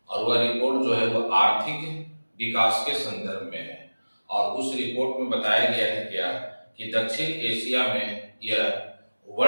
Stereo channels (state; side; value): inverted; both; correlation -1.00